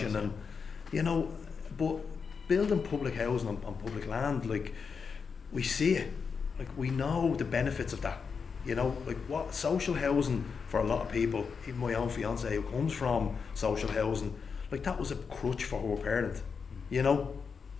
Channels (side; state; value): right; quieter; 5.7 dB